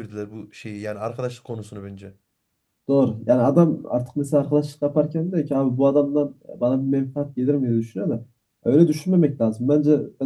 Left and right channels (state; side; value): identical; both; correlation 1.00